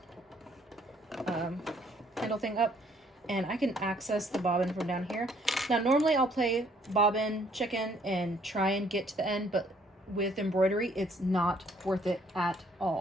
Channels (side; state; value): both; normal; correlation 0.64